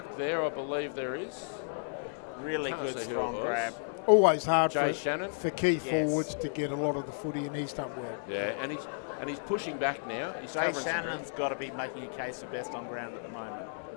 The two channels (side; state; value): right; silent; 56 dB below the other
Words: there? I believe there is. Really Can't good, say who strong it was. grab. Always hard Jay Shannon. for key Yes. forwards to get a lot of the footy, and he's done well. Yeah, and he's pushing back now. He's Jay covering some Shannon's got to be making a case for best on ground at the moment.